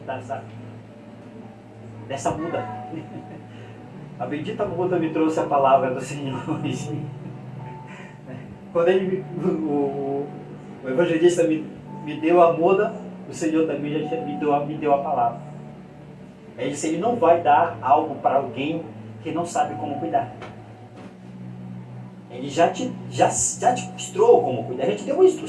dessa muda. A bendita muda me trouxe a palavra do Senhor hoje. Quando o evangelista me deu a muda, o Senhor também já me deu a palavra. Ele disse, ele não vai dar algo para alguém que não sabe como cuidar. Ele já te mostrou como cuidar, já te deu uma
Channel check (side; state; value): both; identical; correlation 1.00